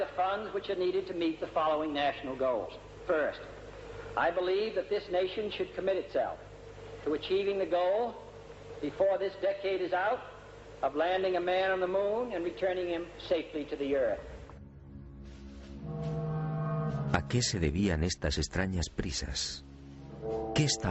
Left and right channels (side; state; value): both; identical; correlation 1.00